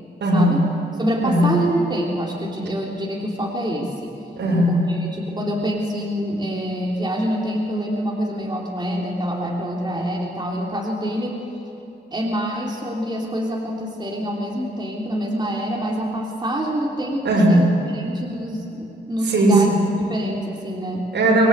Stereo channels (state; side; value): normal; both; correlation 0.67